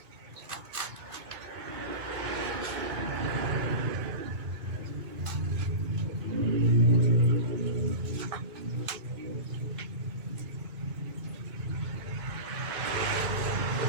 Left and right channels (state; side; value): late; left; 3.5 ms